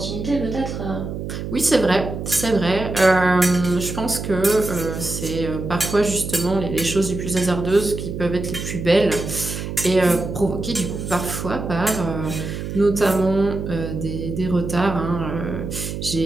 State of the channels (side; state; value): right; noise; hum, 6 dB below the sound